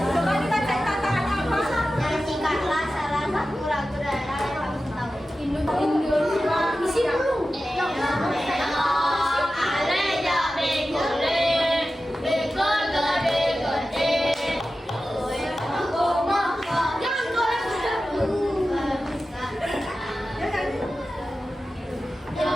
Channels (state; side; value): normal; both; correlation 0.94